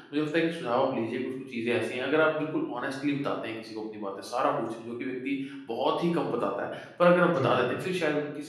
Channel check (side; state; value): both; identical; correlation 1.00